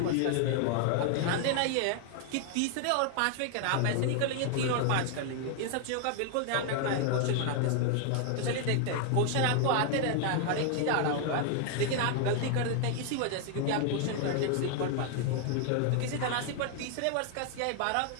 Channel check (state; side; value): different; both; correlation 0.00